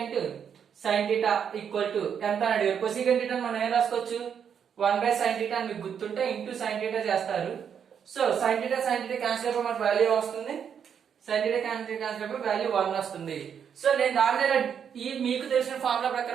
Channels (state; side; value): quieter; left; 7.8 dB